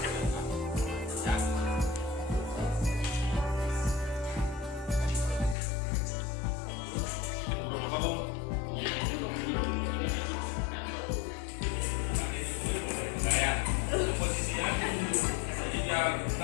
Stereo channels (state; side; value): drops out; right; at 5.6 s